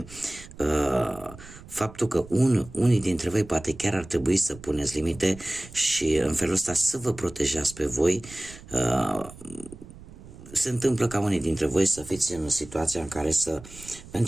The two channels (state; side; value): noise; right; rumble, 18 dB below the sound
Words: faptul că unii dintre voi poate chiar ar trebui să puneți limite și în felul ăsta să vă protejați pe voi. Se întâmplă ca unii dintre voi să fiți în situația în care să